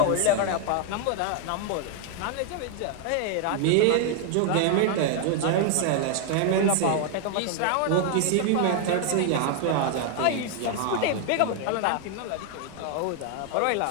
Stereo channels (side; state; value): both; different; correlation 0.00